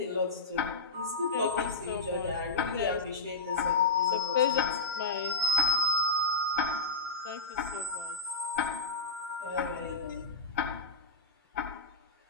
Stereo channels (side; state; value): right; quieter; 3.4 dB